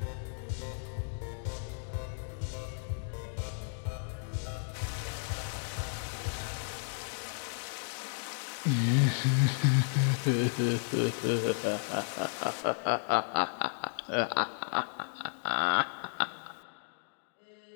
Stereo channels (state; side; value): silent; right; digital silence